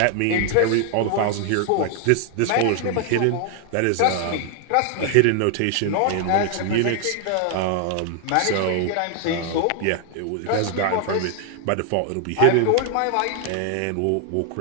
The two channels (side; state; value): both; different; correlation 0.00